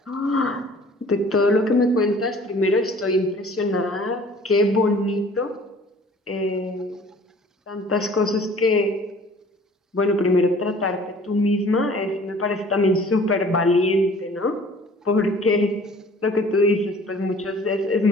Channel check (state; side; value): normal; both; correlation 0.50